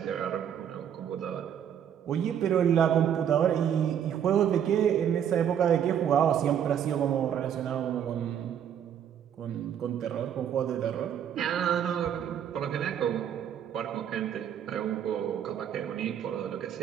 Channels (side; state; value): left; quieter; 9.1 dB